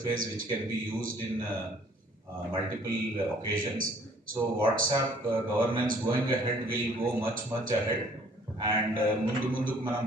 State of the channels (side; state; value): both; normal; correlation 0.58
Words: which can be used in multiple occasions. So WhatsApp governance going ahead will go much ahead. And ముందుకు మనం